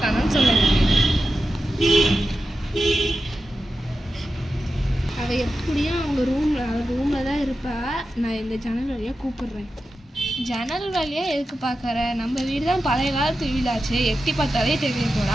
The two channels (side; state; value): both; normal; correlation 0.91